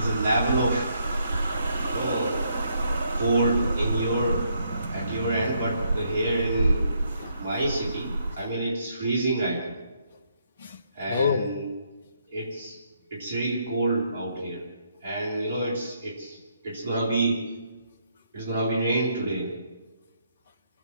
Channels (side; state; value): both; inverted; correlation -0.73